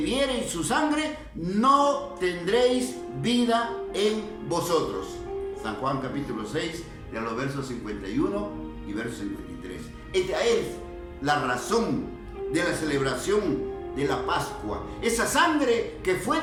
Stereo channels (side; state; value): both; identical; correlation 1.00